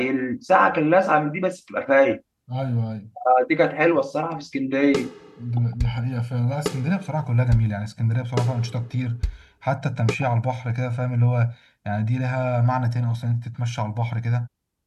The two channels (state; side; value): identical; both; correlation 1.00